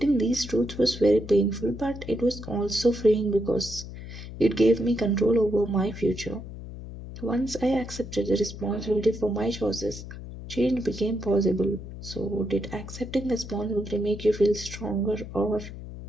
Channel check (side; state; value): left; noise; hum, 11 dB below the sound